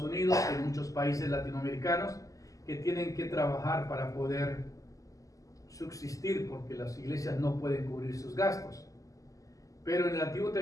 Unidos, en muchos países latinoamericanos que tienen que trabajar para poder subsistir porque las iglesias no pueden cubrir sus gastos. Pero en el Antiguo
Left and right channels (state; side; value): late; right; 0.16 ms